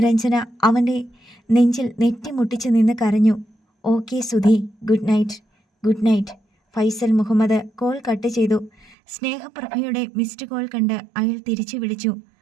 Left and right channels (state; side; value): drops out; left; at 9.0 s